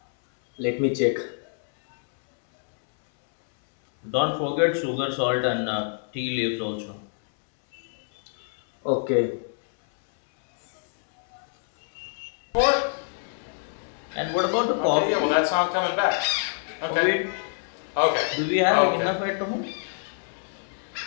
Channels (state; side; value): silent; right; 61 dB below the other